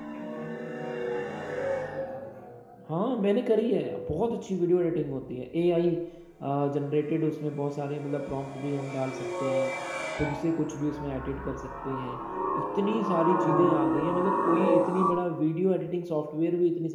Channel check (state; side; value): identical; both; correlation 1.00